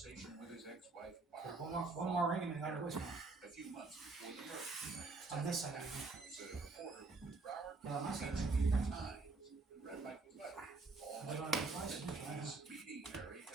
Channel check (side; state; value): left; quieter; 3.7 dB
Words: with his ex-wife, one more ring and I got a voicemail. A few months before the murder. On this side. Said a reporter with Broward Well, on my side. Times read Michael's letter. All I don't Michael have a was meeting Mary